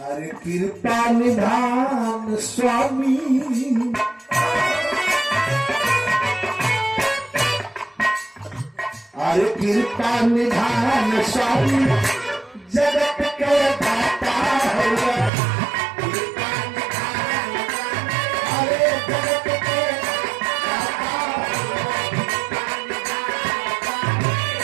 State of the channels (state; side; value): drops out; left; at 15.3 s